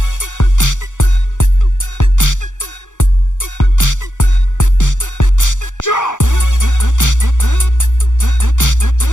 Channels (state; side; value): late; right; 0.86 ms